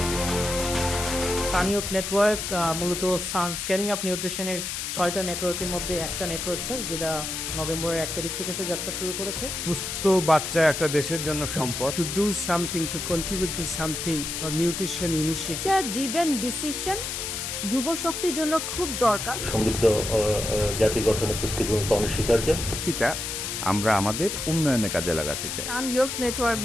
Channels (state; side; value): noise; left; hiss, 4 dB below the sound